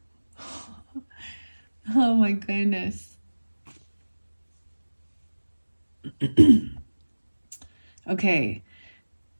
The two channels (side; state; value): both; inverted; correlation -1.00